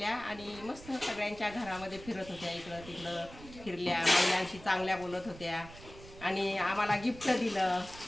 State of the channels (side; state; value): right; noise; rumble, 17 dB below the sound